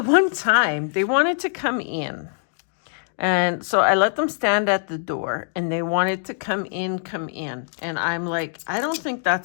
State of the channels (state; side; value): silent; right; digital silence